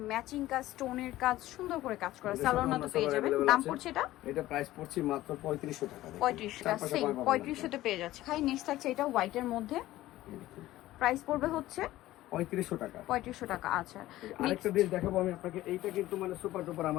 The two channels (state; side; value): quieter; right; 15.8 dB